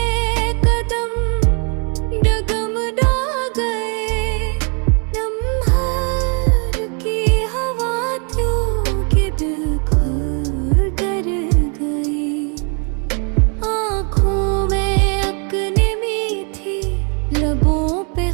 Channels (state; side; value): quieter; left; 37.7 dB